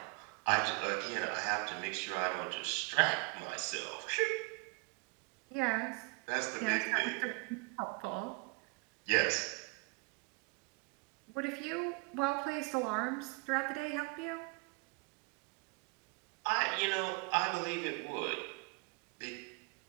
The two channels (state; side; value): quieter; left; 31.4 dB